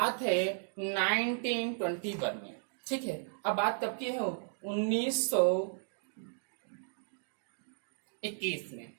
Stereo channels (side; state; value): left; silent; digital silence